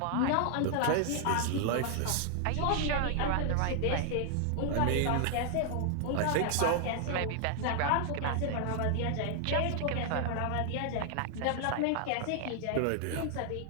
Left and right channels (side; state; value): both; different; correlation 0.00